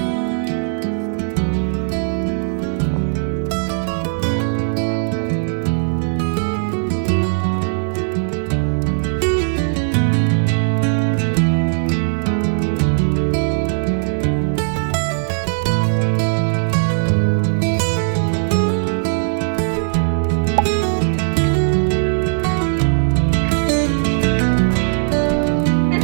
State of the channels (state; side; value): silent; left; digital silence